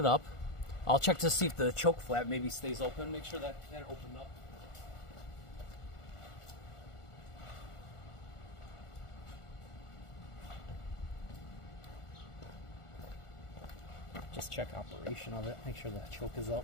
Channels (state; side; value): late; right; 1.4 ms